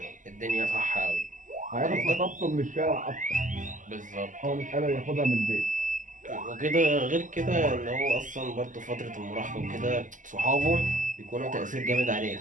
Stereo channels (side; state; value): left; late; 0.37 ms